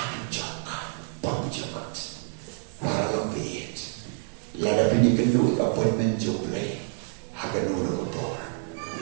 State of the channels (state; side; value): silent; left; 55 dB below the other